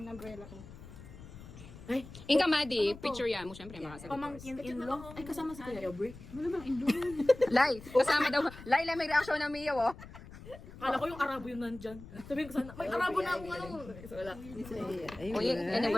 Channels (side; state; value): left; noise; rumble, 16 dB below the sound